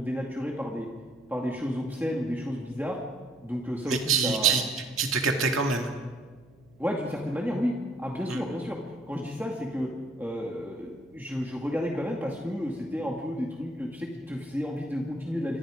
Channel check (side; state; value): right; noise; hum, 28 dB below the sound